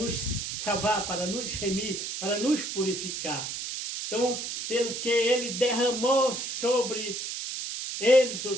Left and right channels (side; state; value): right; noise; hiss, 5 dB below the sound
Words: salvar, para nos remir, para nos purificar. Então, pelo que ele derramou sobre eles, ou